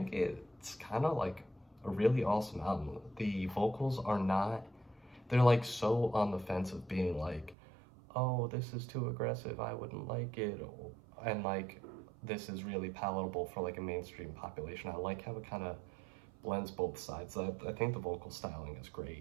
it's kind of a really awesome album. The vocals are not, they're so on the fence of being oh, this is too aggressive, I wouldn't like it, and this is really palatable for a mainstream population. I like how it kind of blends both sides. I think the vocal styling is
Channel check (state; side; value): drops out; left; at 7.6 s